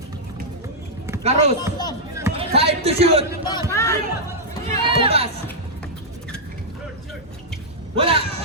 Carlos. 5 to shoot. Tumbas. Wala.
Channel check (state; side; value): normal; both; correlation -0.08